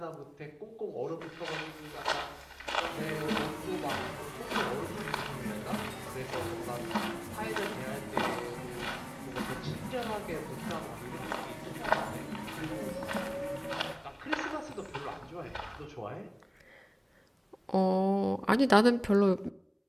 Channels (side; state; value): both; identical; correlation 1.00